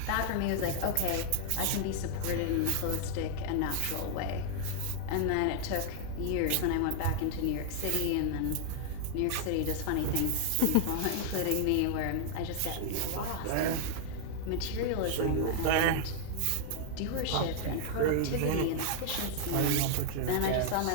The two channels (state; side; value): different; both; correlation 0.00